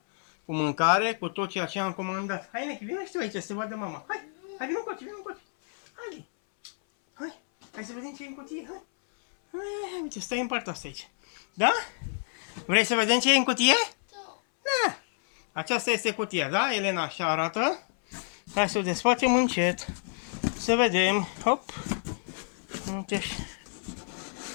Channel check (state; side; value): silent; right; 59 dB below the other